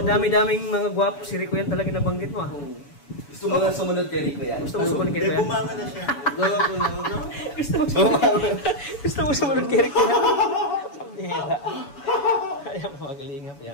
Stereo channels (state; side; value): late; right; 7.0 ms